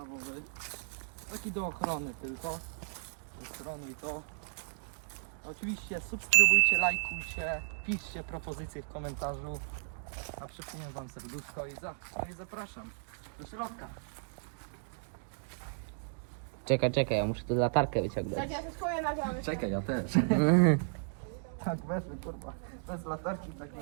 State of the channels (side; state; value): left; silent; digital silence